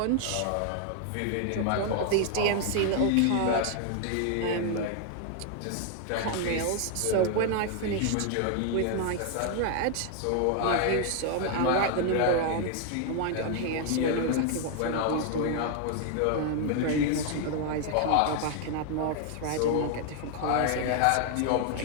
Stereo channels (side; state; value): both; different; correlation 0.00